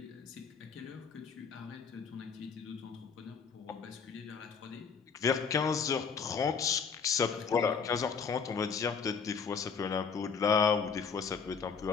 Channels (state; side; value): quieter; right; 6.0 dB